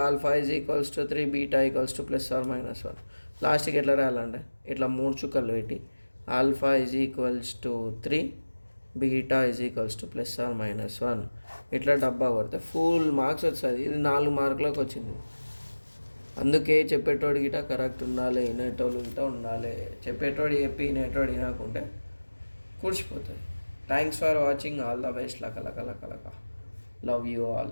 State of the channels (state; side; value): inverted; both; correlation -1.00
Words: alpha is equals to 3, beta equals to +or-1. లాస్ట్కి ఎట్లా రాయాలంటే ఇట్లా 3 చుక్కలు పెట్టి alpha is equals to 3, beta is equals to +or-1. ఇట్లా డబ్బా కొడితే ఫుల్ మార్క్స్ వస్తుంది. ఇది 4 మార్కులకు వచ్చింది. అందుకే చెప్పేటోడు గిట కరెక్ట్ ఉండాలి, వినేటోళ్ళు గిట ఉండాలి. చెప్పేటోడు చెప్పి వినేటోడు వినకుంటే కూర్చిపోతుంది. Thanks for watching. All the best. లక లక లక లక. Love you